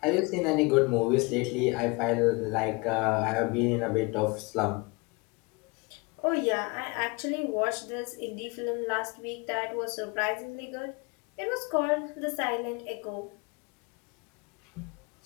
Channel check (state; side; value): quieter; right; 27.4 dB